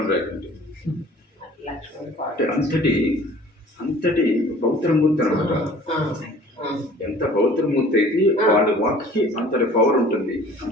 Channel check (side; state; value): both; normal; correlation 0.49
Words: రేఖ అంటే అంతటి పవిత్రమూర్తి అనమాట. ఎంత పవిత్రమూర్తి అయితే వాళ్ళ వాక్కి అంతటి పవర్ ఉంటుంది,